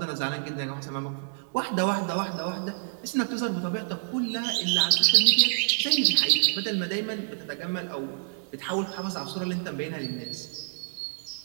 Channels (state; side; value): silent; left; digital silence